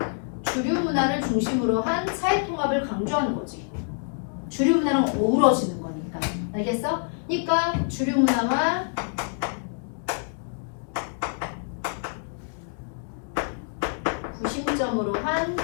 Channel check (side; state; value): right; silent; 61 dB below the other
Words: 주류 문화를 중심으로 한 사회 통합을 강조하는 거지. 주류 문화랑 어우러지는 거니까. 알겠어? 그러니까 주류 문화와 구심점으로 한